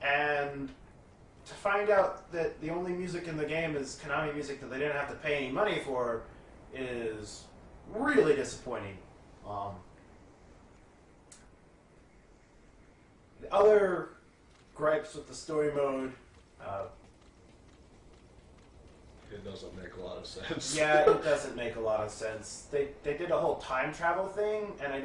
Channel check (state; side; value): identical; both; correlation 1.00